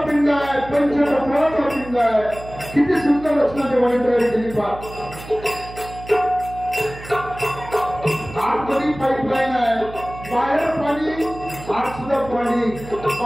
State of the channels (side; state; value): right; noise; hum, 15 dB below the sound